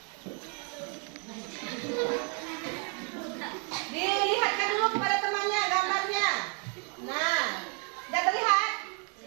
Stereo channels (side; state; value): left; quieter; 38.3 dB